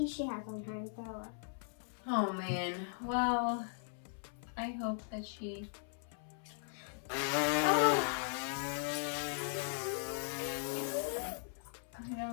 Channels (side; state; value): right; silent; 52 dB below the other